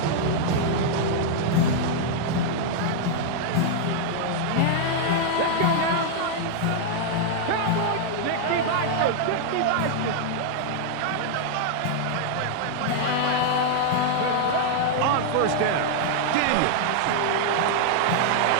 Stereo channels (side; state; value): both; different; correlation -0.01